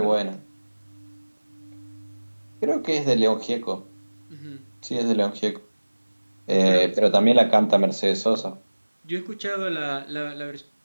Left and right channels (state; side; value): inverted; both; correlation -1.00